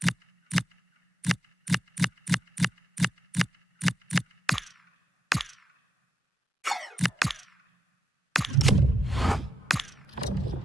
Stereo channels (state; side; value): normal; both; correlation 0.81